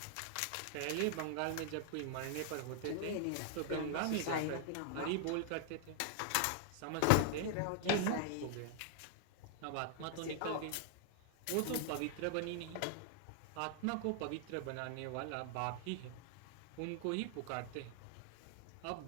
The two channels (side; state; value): both; different; correlation 0.00